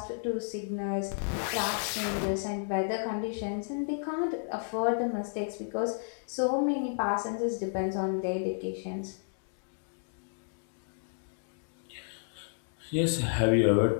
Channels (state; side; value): silent; right; digital silence